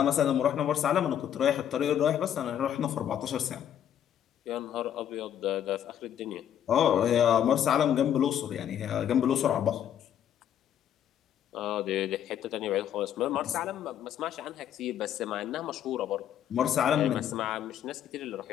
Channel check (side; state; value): right; quieter; 10.0 dB